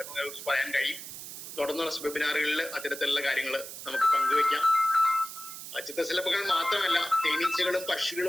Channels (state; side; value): noise; right; hiss, 11 dB below the sound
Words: കുറിച്ച് പറയാൻ കഴിയും. തുടർന്നുള്ള വെബിനാറുകളിൽ അത്തരത്തിലുള്ള കാര്യങ്ങൾ നമുക്ക് പങ്കുവയ്ക്കാം. ചിത്രശലഭങ്ങൾ മാത്രമല്ല, തേനീച്ചകളും